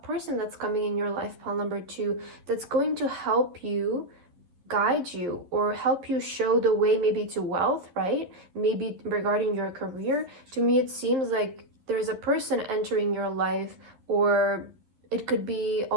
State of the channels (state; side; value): late; left; 11 ms